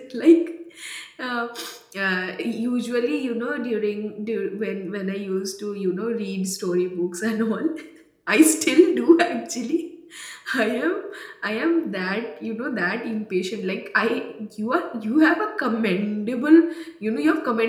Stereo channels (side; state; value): both; identical; correlation 1.00